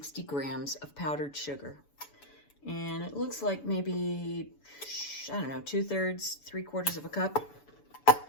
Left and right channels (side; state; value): right; late; 7.0 ms